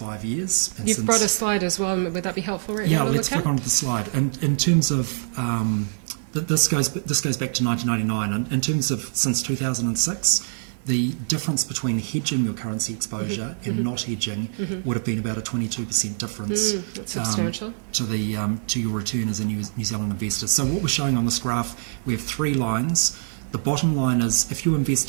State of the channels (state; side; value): silent; left; 62 dB below the other